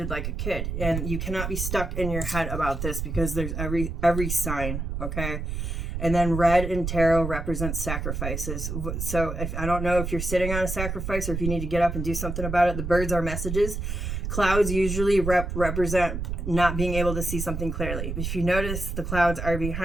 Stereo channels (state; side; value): noise; right; rumble, 4 dB below the sound